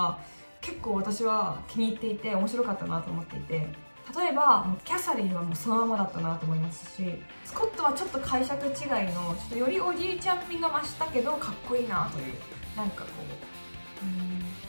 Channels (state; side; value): inverted; both; correlation -1.00